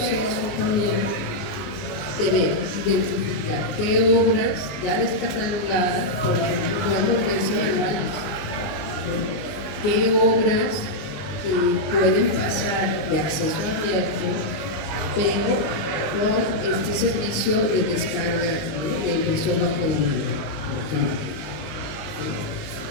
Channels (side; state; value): right; late; 19 ms